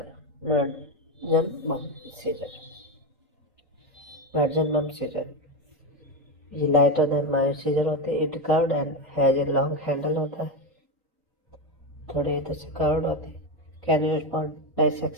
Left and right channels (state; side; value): normal; both; correlation 0.12